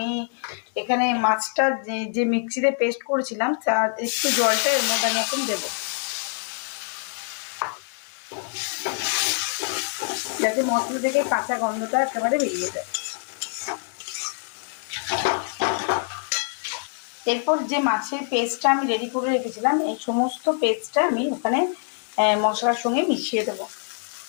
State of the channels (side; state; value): right; silent; 58 dB below the other